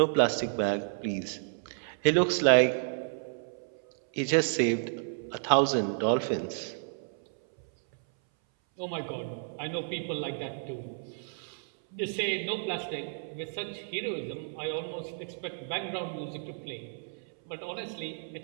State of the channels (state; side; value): silent; left; 57 dB below the other